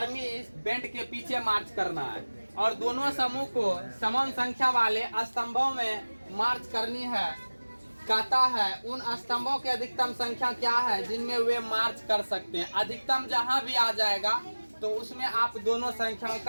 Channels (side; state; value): both; inverted; correlation -1.00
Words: बैंड के पीछे मार्च करना है, और दोनों समूह को समान संख्या वाले स्तंभों में मार्च करनी है। कहता है उन स्तंभों की अधिकतम संख्या क्या है जिनमें वे मार्च कर सकते हैं। अधिकतम जहां भी आ जाएगा तो उसमें आप दोनों संख्याओं